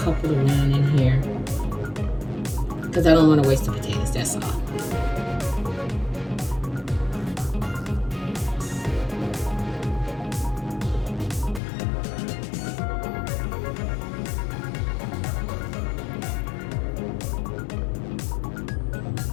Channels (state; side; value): drops out; right; at 11.6 s